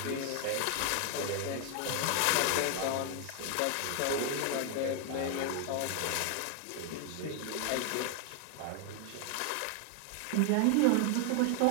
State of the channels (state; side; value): different; both; correlation 0.00